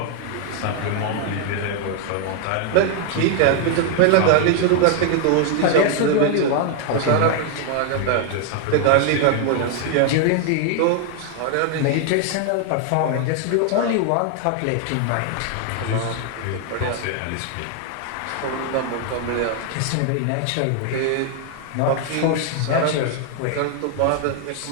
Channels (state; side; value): different; both; correlation 0.00